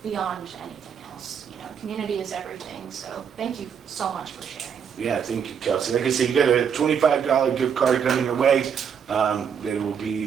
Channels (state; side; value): quieter; left; 7.4 dB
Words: beyond anything else. Community is everything. So thank you so much for sharing. Yeah, thank you, Kelsey. Like I said, you got a $25 gift card coming your way.